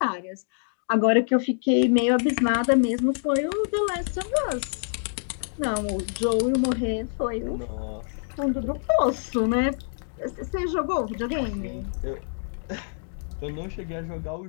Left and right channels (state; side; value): silent; right; digital silence